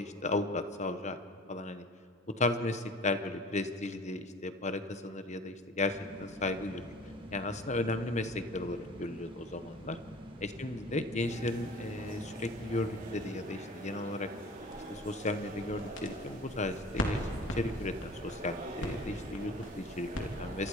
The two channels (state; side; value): normal; both; correlation 0.44